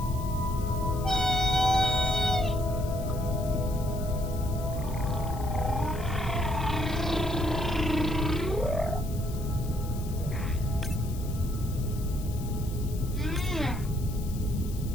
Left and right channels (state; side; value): noise; left; hiss, 17 dB below the sound